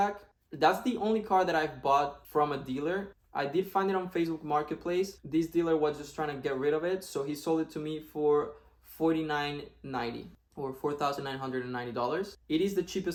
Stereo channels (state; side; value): identical; both; correlation 1.00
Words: That's the only car that I've bought from a dealer. I did find it on Facebook Marketplace. This dealer was just trying to get rid of it, so he sold it to me for $4,990 or $4,990. It is the